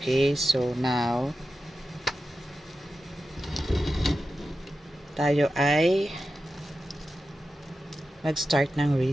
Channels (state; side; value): normal; both; correlation 0.91